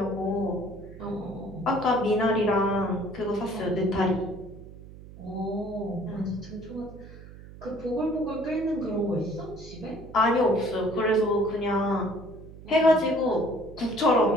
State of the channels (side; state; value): right; noise; hum, 17 dB below the sound